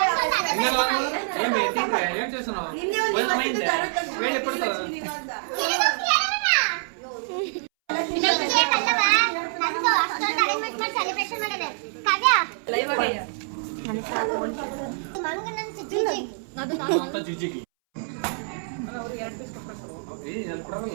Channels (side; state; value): left; silent; 61 dB below the other